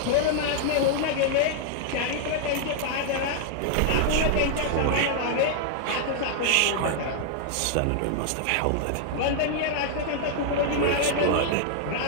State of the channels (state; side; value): different; both; correlation -0.01